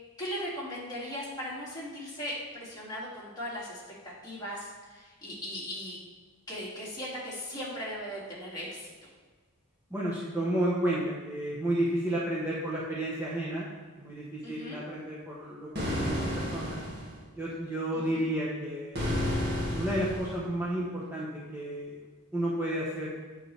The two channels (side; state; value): both; normal; correlation 0.58